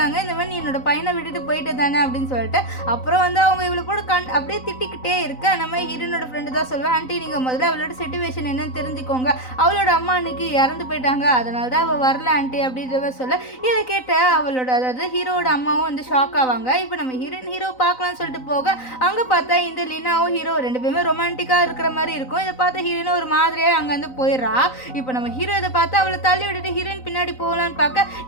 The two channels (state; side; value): late; right; 3.9 ms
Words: இந்த மாதிரி நீ என்னோட பையனை விட்டுட்டு போயிட்டு தானே அப்படின்னு சொல்லிட்டு. அப்புறம் வந்து அவங்க இவ்வளோ கூட அப்படியே திட்டிக்கிட்டே இருக்க. நம்ம ஹீரோனோட ஃப்ரெண்டு தான் சொல்லுவேன், ஆண்டி நீங்கள் முதல்ல அவளோட சிச்சுவேஷன் என்னன்னு தெரிஞ்சுக்கோங்க, அவளோட அம்மா அன்னைக்கு இறந்து போயிட்டாங்க, அதனால தான் அவள் வரல ஆண்டி அப்படின்றத சொல்ல. இதை கேட்ட அவளோட அதாவது ஹீரோட அம்மாவும் வந்து ஷாக் ஆவாங்க. இப்போ நம்ம ஹீரோ பார்க்கலாம்னு சொல்லிட்டு போக அங்கே பார்த்தா இந்த லீனாவும் ஹீரோ ரெண்டு பேருமே ரொமான்டிக்காக இருக்கிற மாதிரி இருக்கும். இதை பார்த்து ஹீரோயினும் ஒரு மாதிரியாக அங்கே வந்து போயிடுறா. இப்போ நம்ம ஹீரோ இதை பார்த்து அவளை தள்ளி விட்டுட்டு ஹீரோயின் பின்னாடி போகலான்னு பார்க்க,